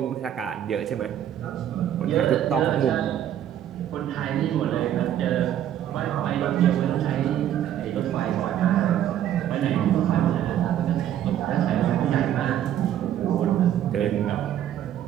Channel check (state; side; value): quieter; left; 10.9 dB